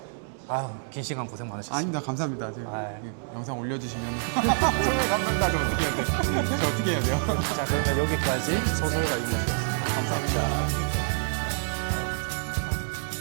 아유, 긴 시간 고생 많으셨습니다. 아닙니다. 감사합니다. 제가 아이. 영상 올려주시면 정말 감사합니다. 저 어떻게 해야 돼요? 저 어떻게 해야 돼요? 자, 그러면 여기까지 소설가 유무였습니다. 감사합니다.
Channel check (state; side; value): silent; left; digital silence